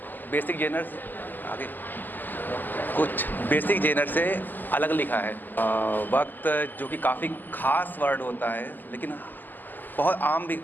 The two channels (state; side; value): late; right; 0.088 ms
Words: बेसिक जेनर से अलग लिखा है। वक्त जो कि काफ़ी ख़ास वर्ड होता है, लेकिन बहुत आम भी